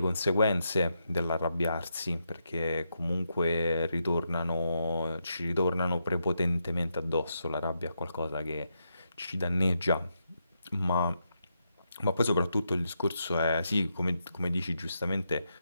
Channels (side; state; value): both; inverted; correlation -0.83